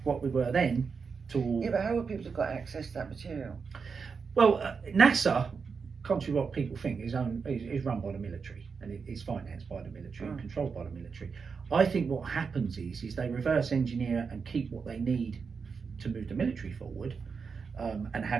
what we were then, to but how would people have got access to that material? Well, NASA contrary to what people think, is run by the military, and it is financed by the military and controlled by the military. I think what happens is they reverse engineer and keep what they need to move the military forward, and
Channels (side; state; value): left; quieter; 5.5 dB